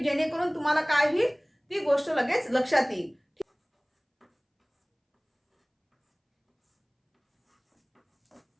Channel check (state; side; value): identical; both; correlation 1.00